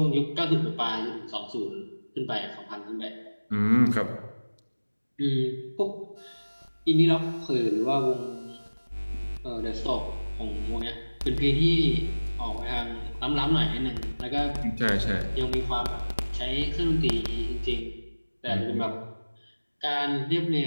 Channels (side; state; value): both; inverted; correlation -1.00